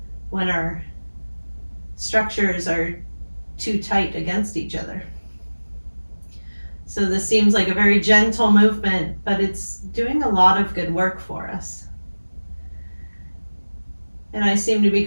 when our structures are too tight against each other. So this seems like a very gentle movement, but it's doing a lot of good work for us. And I seem to be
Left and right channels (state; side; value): inverted; both; correlation -1.00